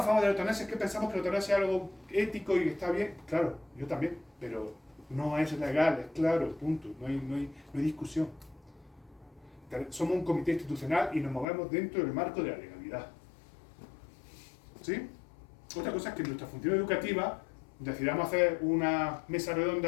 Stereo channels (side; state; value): right; drops out; at 11.5 s